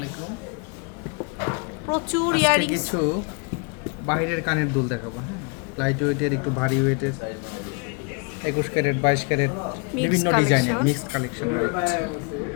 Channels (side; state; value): right; quieter; 34.4 dB